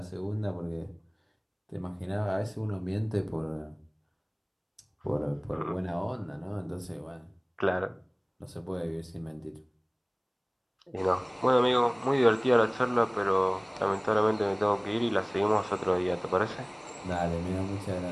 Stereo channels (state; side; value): identical; both; correlation 1.00